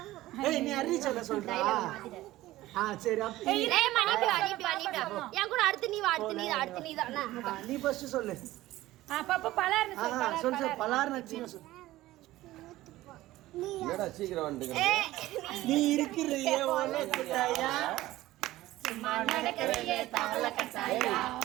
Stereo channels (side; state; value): left; quieter; 16.5 dB